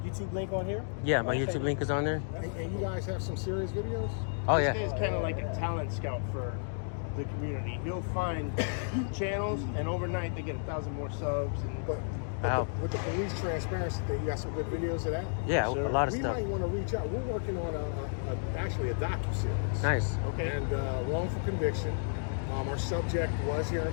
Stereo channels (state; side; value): silent; right; digital silence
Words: YouTube link on here? Yeah, my YouTube link is on there. And you guys have some serious videos? Oh This yeah. guy's kind of like a talent scout for the community. He'll find channels, and overnight they get 1,000 more subs. And But Wow. with the police transparency thing, you got some good videos of that? Yeah, Sure. a lot of We stuff. might want to reach out. We're working on actually a docu-series. Nice. okay. And wrongful conviction. Our subject was here in